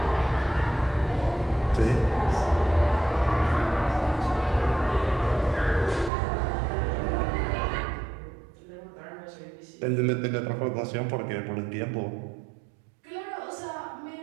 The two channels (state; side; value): drops out; left; at 6.1 s